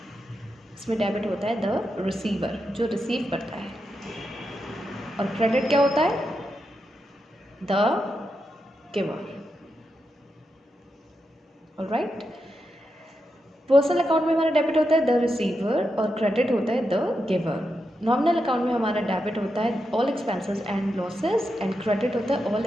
इसमें डेबिट होता है द रिसीवर, जो रिसीव करता है। और क्रेडिट क्या होता है, the giver. Alright, personal account में हमारा डेबिट होता है द रिसीवर और क्रेडिट होता है द गिवर। नॉमिनल अकाउंट में हमारा डेबिट होता है all expenses and losses and credit होता है all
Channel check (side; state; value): both; normal; correlation 0.86